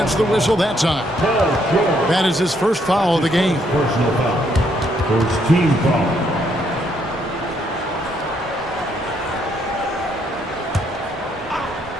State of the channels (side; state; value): both; normal; correlation 0.72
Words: the whistle that time. That is his first foul of the game. Personal foul. First team foul.